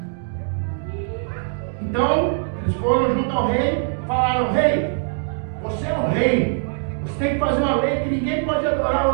Então, eles foram junto ao rei e falaram: rei, você é o rei, você tem que fazer uma lei que ninguém pode adorar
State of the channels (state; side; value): silent; left; 64 dB below the other